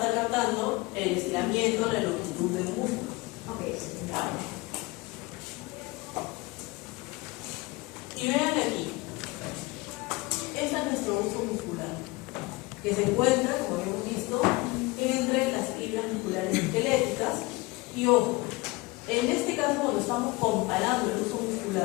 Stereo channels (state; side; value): quieter; right; 23.4 dB